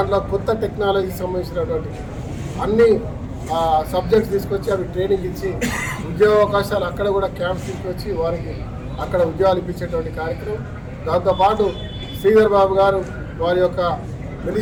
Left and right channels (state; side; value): identical; both; correlation 1.00